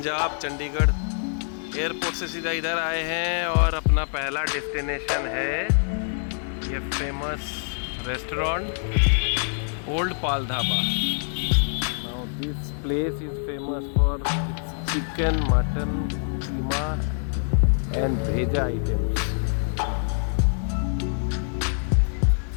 चंडीगढ़। एयरपोर्ट से सीधा इधर आए हैं और अपना पहला डेस्टिनेशन है ये famous restaurant old Pal dhaba. Now this place is famous for chicken, mutton, keema and भेजा आइटम्स।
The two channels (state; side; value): silent; right; 62 dB below the other